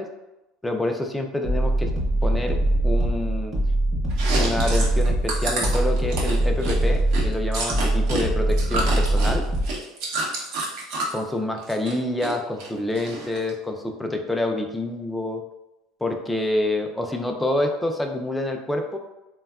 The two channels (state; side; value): normal; both; correlation 0.79